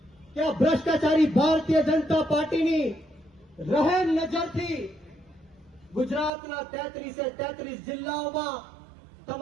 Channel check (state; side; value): drops out; left; at 6.3 s